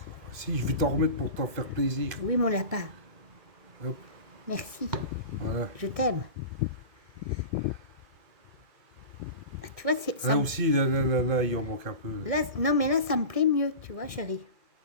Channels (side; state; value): left; late; 2.1 ms